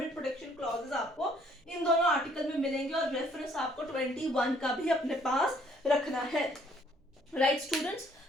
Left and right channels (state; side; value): normal; both; correlation 0.63